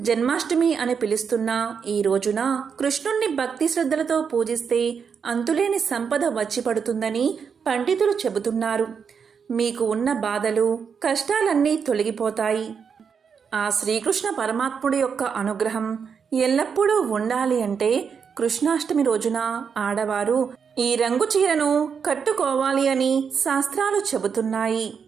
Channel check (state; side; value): quieter; left; 6.5 dB